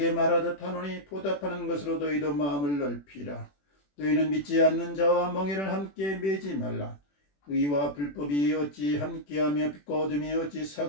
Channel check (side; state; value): right; late; 21 ms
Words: 말하듯 하노니 보답하는 것으로 너희도 마음을 넓히라. 너희는 믿지 않는 자와 멍에를 함께 매지 말라. 의와 불법이 어찌 함께하며 빛과 어둠이 어찌